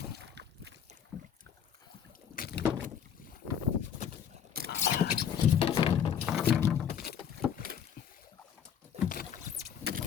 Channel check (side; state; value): right; quieter; 8.5 dB